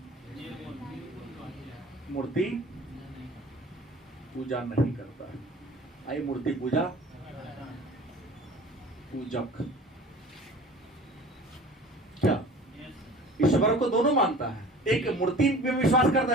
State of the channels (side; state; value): both; normal; correlation 0.43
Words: मूर्ति पूजा नहीं करता है। आई मूर्ति पूजा पूजक। क्या ईश्वर को दोनों मानता है? एक मूर्ति में विश्वास करता